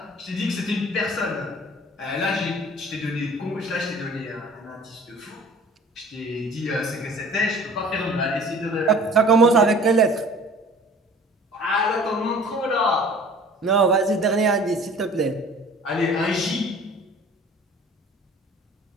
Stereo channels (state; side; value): normal; both; correlation 0.47